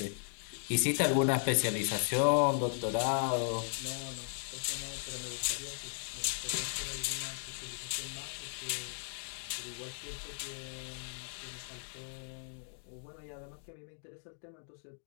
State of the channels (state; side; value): silent; right; digital silence